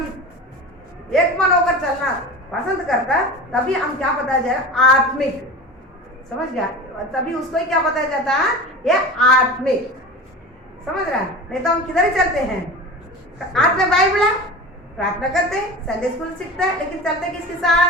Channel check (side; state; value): both; normal; correlation 0.32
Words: एक मन होकर चलना पसंद करता है, तभी हम क्या बताया जाएगा, आत्मिक। समझ गया? तभी उसको ही क्या बताया जाता है, ये आत्मिक। समझ रहा है? नहीं तो हम किधर ही चलते हैं, हाथ में बाइबल है, प्रार्थना करते हैं, संडे स्कूल सीखते हैं, लेकिन चलते किसके